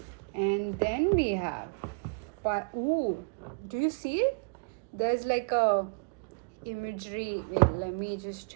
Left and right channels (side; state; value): left; quieter; 37.0 dB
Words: and then we have pile. Ooh, do you see it? There's like a imagery. Wait, let me